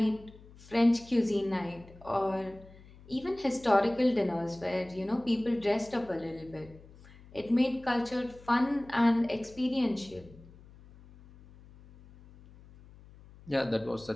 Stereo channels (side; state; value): left; noise; hum, 22 dB below the sound